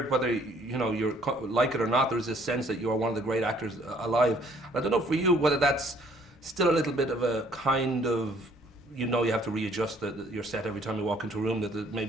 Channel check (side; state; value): both; normal; correlation 0.61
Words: whether you like it or not, there's this sense that you are one of the great actors alive. And I don't know for you whether that's still a little bit of a kind of, you have to readjust your set every time you walk into a room, that